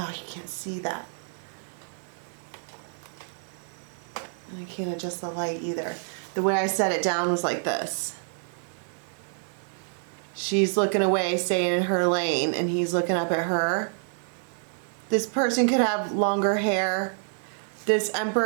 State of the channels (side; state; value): left; silent; digital silence